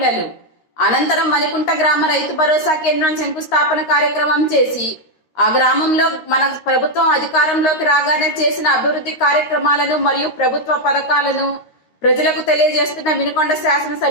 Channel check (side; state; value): right; late; 13 ms